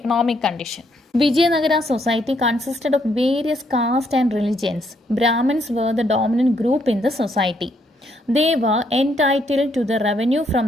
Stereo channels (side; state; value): both; normal; correlation 0.73